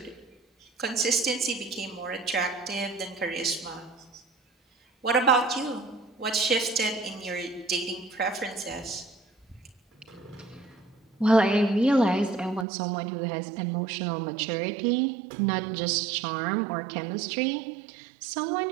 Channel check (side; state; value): left; drops out; at 12.7 s